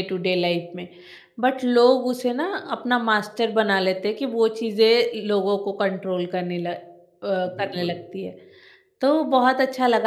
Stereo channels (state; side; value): identical; both; correlation 1.00